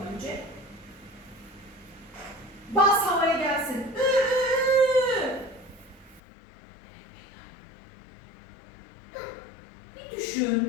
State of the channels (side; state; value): right; drops out; at 6.2 s